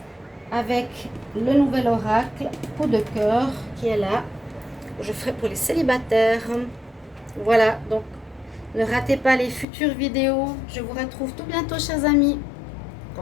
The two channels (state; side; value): drops out; right; at 9.7 s